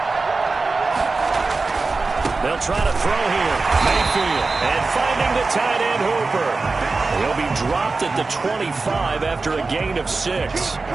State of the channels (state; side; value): quieter; left; 3.9 dB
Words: They'll try to throw here. Mayfield, and finding the tight end Hooper. He'll be dropped at the 25 after a gain of 6.